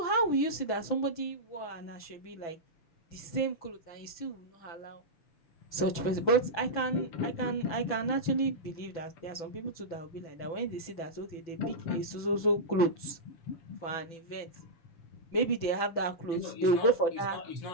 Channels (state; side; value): late; right; 6.0 ms